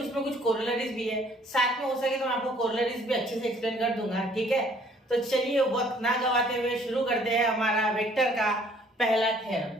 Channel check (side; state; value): both; normal; correlation 0.60